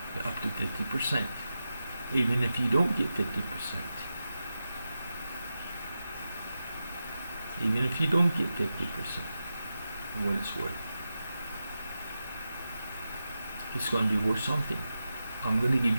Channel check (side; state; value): both; inverted; correlation -0.91